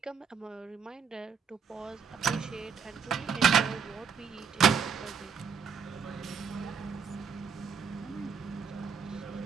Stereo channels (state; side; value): quieter; left; 6.2 dB